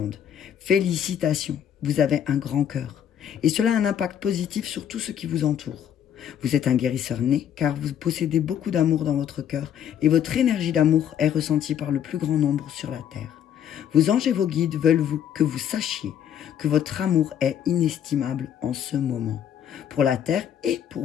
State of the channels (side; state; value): right; quieter; 9.4 dB